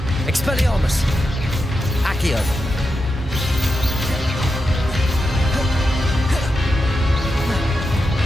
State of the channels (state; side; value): normal; both; correlation 0.88